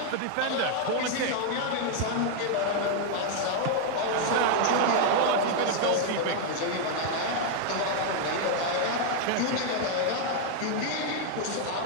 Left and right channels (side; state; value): both; different; correlation 0.00